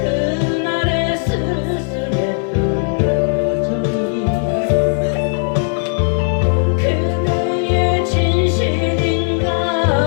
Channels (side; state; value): right; silent; digital silence